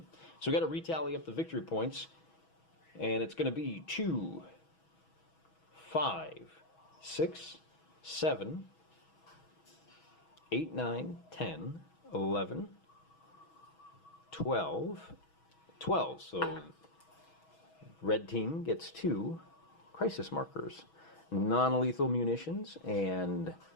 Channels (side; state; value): right; late; 6.2 ms